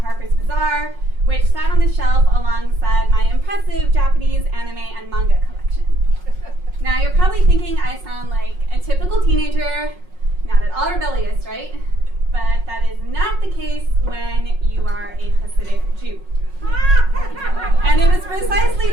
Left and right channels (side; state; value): left; late; 5.5 ms